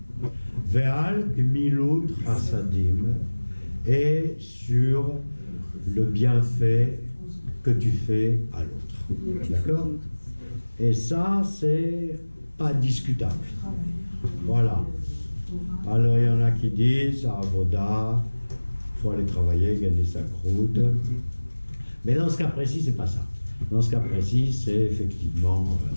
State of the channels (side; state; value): both; inverted; correlation -1.00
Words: Ve'al Gmilut Chassadim, et sur le bienfait que tu fais à l'autre. D'accord? Et ça, c'est pas discutable. Voilà. Alors, il y en a qui disent, à Avoda, il faut aller travailler, gagner sa croûte. Mais dans ce cas précis, c'est pas ça. Dans ce cas précis, c'est effectivement